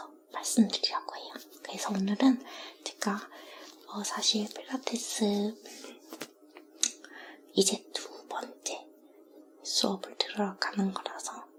말씀드리려고 해요. 그래서 오늘은 제가 사실 필라테스 이제 2번째 수업을 들으러 가는 거라서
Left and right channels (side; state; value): both; identical; correlation 1.00